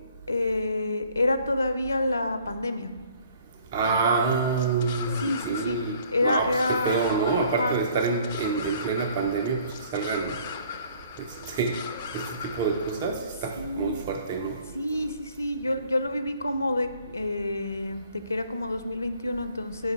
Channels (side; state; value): both; inverted; correlation -0.57